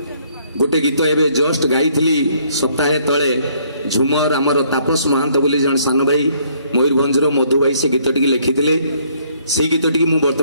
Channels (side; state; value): both; inverted; correlation -0.65